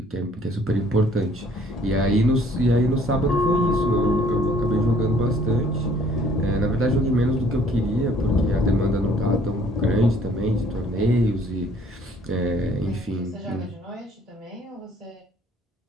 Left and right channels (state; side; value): normal; both; correlation 0.59